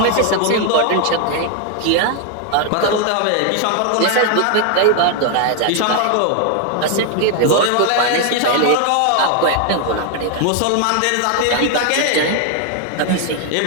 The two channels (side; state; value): both; different; correlation 0.00